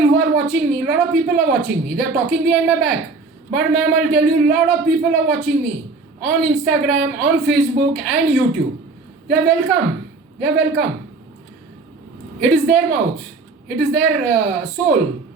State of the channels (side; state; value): left; quieter; 3.9 dB